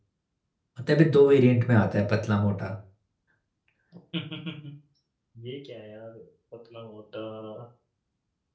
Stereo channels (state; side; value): identical; both; correlation 1.00